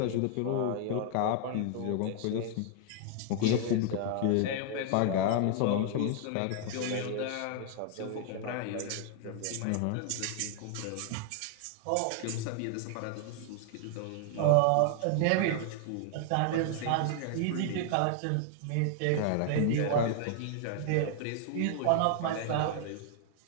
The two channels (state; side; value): different; both; correlation 0.00